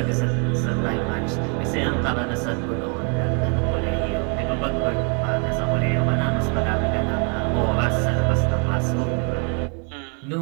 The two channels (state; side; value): quieter; left; 37.0 dB